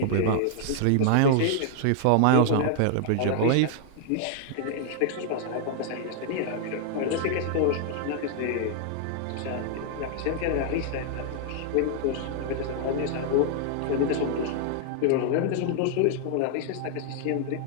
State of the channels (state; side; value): different; both; correlation -0.01